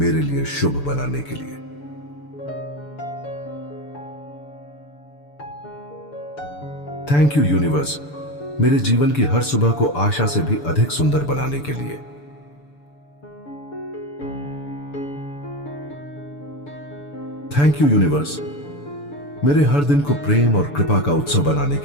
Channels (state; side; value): late; right; 6.9 ms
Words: लिए शुभ बनाने के लिए। थैंक यू यूनिवर्स, मेरे जीवन की हर सुबह को आशा से भी अधिक सुंदर बनाने के लिए। थैंक यू यूनिवर्स, मेरे हर दिन को प्रेम और कृपा का उत्सव बनाने